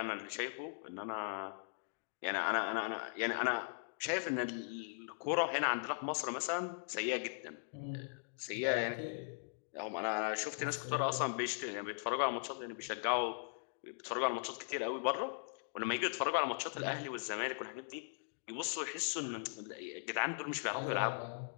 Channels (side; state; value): right; silent; digital silence